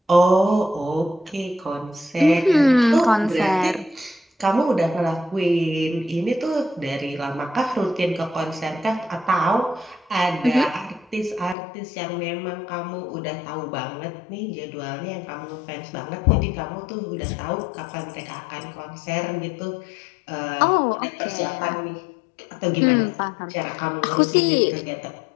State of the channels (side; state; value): right; drops out; at 11.6 s